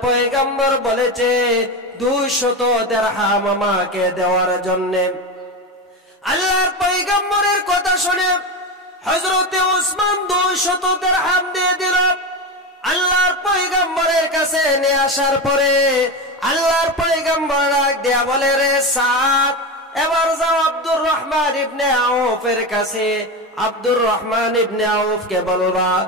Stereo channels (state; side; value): normal; both; correlation 0.19